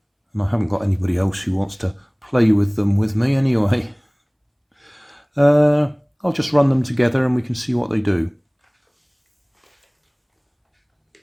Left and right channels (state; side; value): identical; both; correlation 1.00